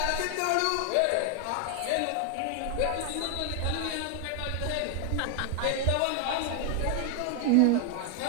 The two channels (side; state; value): both; different; correlation 0.00